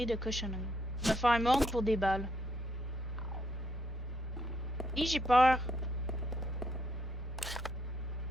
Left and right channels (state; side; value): normal; both; correlation 0.74